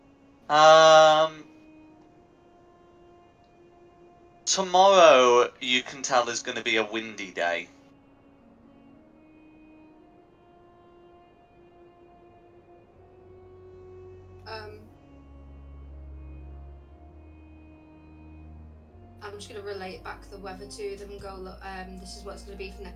Tomorrow you can tell is going to be a windy day. I'm just going to relate back the weather to them and go, look, this is what it's going to be for the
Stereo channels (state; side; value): identical; both; correlation 1.00